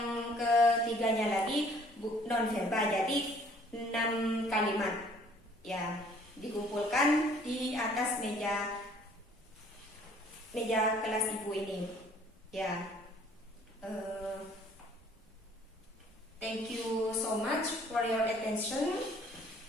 ketiganya lagi non verba. Jadi 6 kalimat. Ya, dikumpulkan di atas meja kelas ibu ini. Ya. Thank you so much for your attention.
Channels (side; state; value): both; normal; correlation 0.57